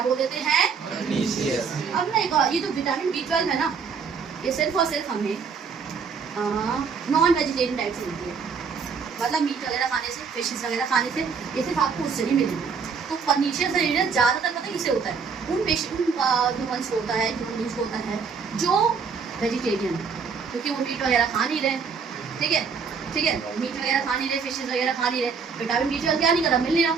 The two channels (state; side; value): quieter; left; 5.7 dB